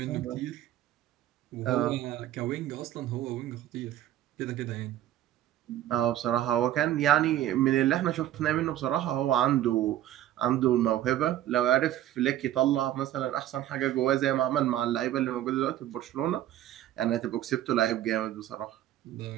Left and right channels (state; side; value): quieter; left; 12.9 dB